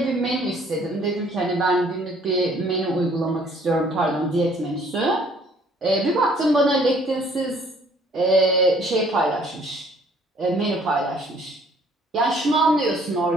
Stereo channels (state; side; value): normal; both; correlation 0.59